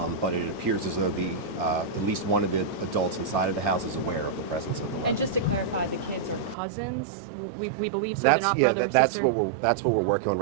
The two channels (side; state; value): left; drops out; at 6.6 s